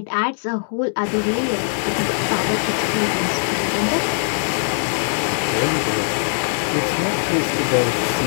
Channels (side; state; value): right; silent; digital silence